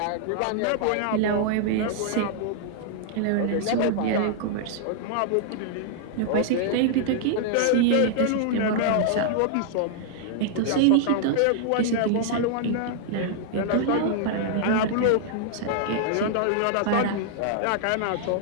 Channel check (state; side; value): different; both; correlation -0.01